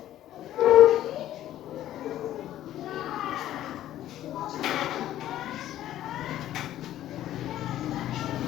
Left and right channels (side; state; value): right; quieter; 12.9 dB